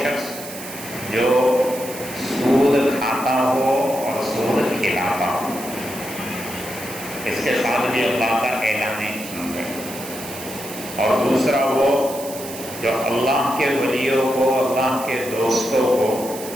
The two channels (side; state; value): right; noise; hiss, 12 dB below the sound